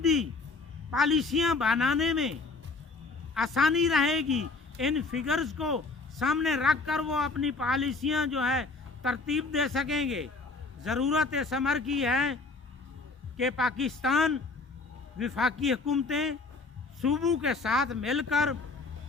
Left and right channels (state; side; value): quieter; right; 3.9 dB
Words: पॉलिसियाँ बनाने में आसानी रहेगी। इन फिगर्स को सामने रख कर वो अपनी पॉलिसियाँ जो है तरतीब दे सकेंगे। ज़रूरत इस अमर की है कि पाकिस्तान वफाकी हुकूमतें सूबों के साथ मिलकर